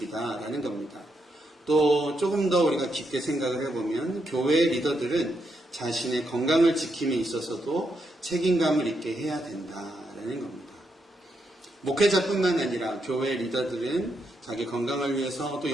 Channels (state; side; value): normal; both; correlation 0.80